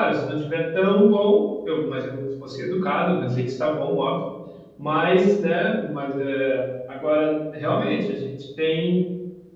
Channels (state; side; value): identical; both; correlation 1.00